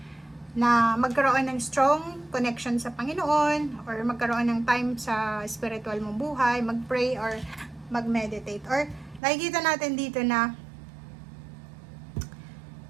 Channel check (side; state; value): left; drops out; at 9.2 s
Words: na magkaroon ng strong connection sa Panginoon or magkaroon ng time sa spiritual mong buhay, mag-pray or mag-meditate. Or nakikita natin dito na